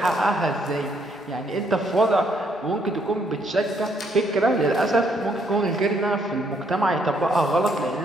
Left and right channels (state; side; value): normal; both; correlation 0.71